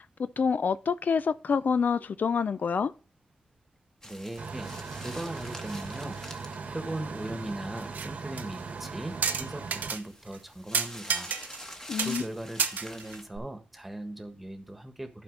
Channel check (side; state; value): both; normal; correlation 0.61